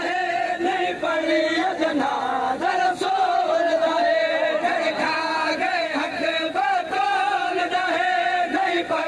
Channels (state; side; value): identical; both; correlation 1.00